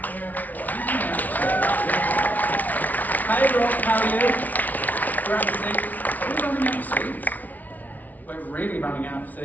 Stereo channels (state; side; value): late; right; 0.077 ms